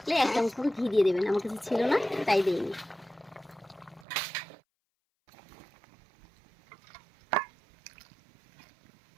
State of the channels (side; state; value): left; drops out; at 4.0 s